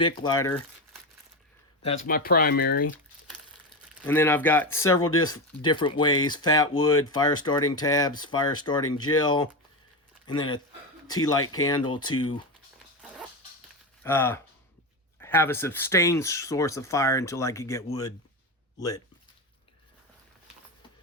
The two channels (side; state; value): both; normal; correlation 0.17